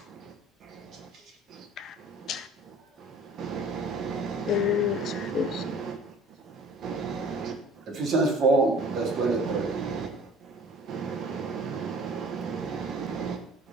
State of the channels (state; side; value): normal; both; correlation 0.48